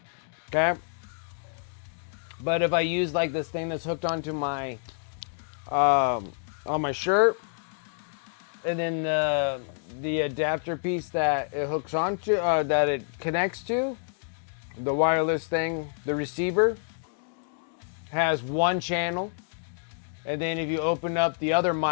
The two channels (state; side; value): silent; right; digital silence